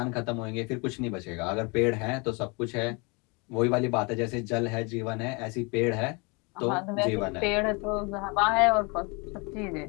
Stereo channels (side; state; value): right; quieter; 30.0 dB